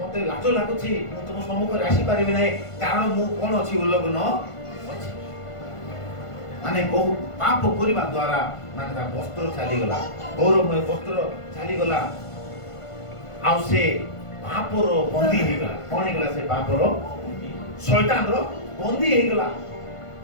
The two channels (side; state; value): right; late; 1.5 ms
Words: ଲାଜ ଲାଗୁଛି, ମୁଁ ତୁମ ସମ୍ମୁଖରେ ଆସିପାରିବି ନାହିଁ, କାରଣ ମୁଁ କଣ ଅଛି? ଉଲ୍ଲଗ୍ନ ଅଛି। ମାନେ ବହୁ ପାପ କରିବା ଦ୍ୱାରା ମାନେ ତା ବସ୍ତ୍ର ଚାଲିଗଲା, ଗୌରବମୟ ବସ୍ତ୍ର ଚାଲିଗଲା, ଆଉ ସେ ପାପର ବନ୍ଦୀ ହେଇଗଲା। କଣ ହେଇଗଲା? ସେ ପାପର, ଶୈତାନର ବନ୍ଦୀ ହେଇଗଲା।